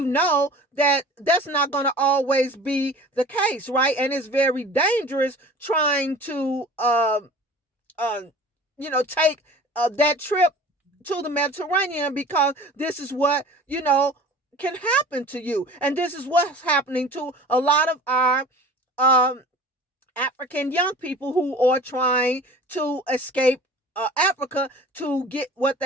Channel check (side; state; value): both; normal; correlation 0.43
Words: know that that's not going to always be the case, right? And it's very dangerous trying to, take that trip to the Mediterranean, because this is what, can happen to you. And this is what's happening to a lot of our um, African young people who are trying to escape Africa to get what